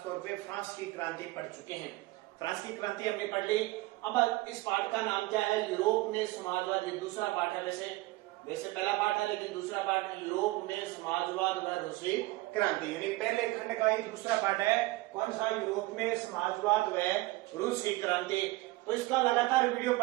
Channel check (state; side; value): quieter; left; 20.2 dB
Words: तौर पे फ्रांस की क्रांति पढ़ चुके हैं। फ्रांस की क्रांति हमने पढ़ ली। अब इस पाठ का नाम क्या है? यूरोप में समाजवाद। ये दूसरा पाठ है, वैसे पहला पाठ है लेकिन दूसरा पाठ है यूरोप में समाजवाद व रूसी क्रांति, यानी पहले खंड का ही दूसरा पाठ है। कौन सा? यूरोप में समाजवाद व रूसी क्रांति। तो इसका लगातार वीडियो